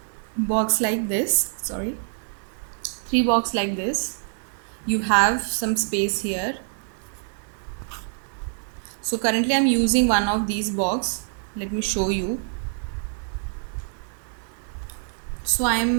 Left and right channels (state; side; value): silent; left; digital silence